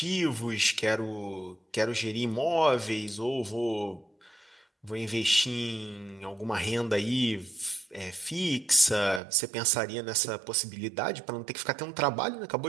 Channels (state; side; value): drops out; left; at 9.2 s